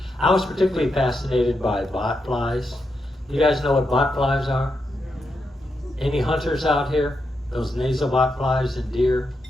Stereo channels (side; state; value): both; normal; correlation 0.84